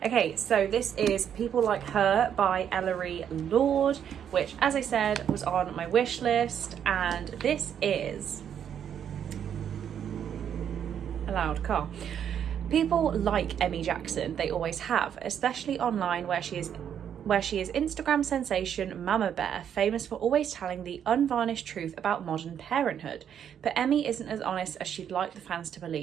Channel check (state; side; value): quieter; left; 8.9 dB